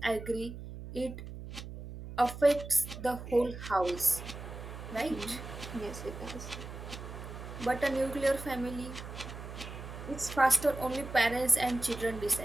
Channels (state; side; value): noise; right; hum, 10 dB below the sound